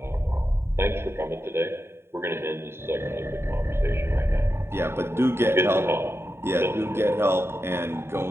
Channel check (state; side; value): late; left; 0.12 ms